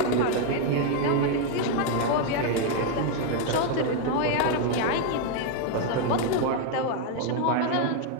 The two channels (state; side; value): different; both; correlation 0.00